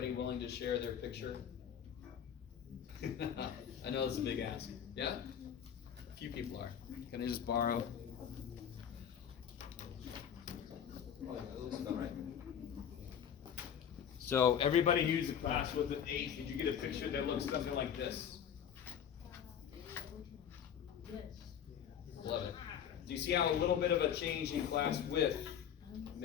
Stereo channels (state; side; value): quieter; right; 8.7 dB